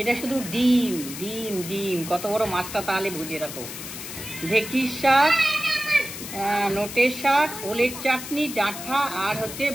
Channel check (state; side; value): noise; left; hiss, 10 dB below the sound